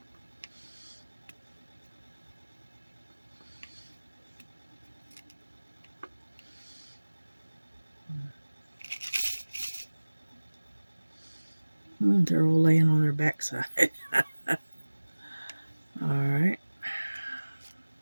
They're all laying on their backside. All right.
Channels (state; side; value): inverted; both; correlation -1.00